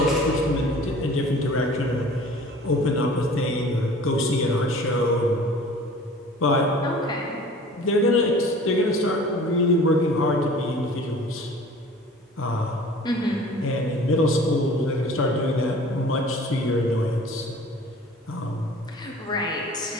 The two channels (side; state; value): both; normal; correlation 0.45